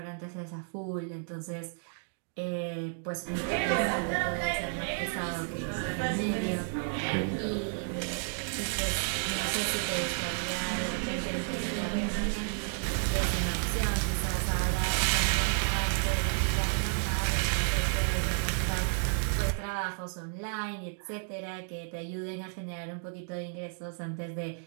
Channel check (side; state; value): left; silent; 57 dB below the other